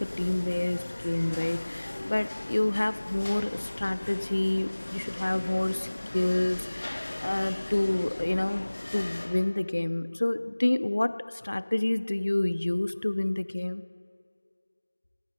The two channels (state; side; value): inverted; both; correlation -1.00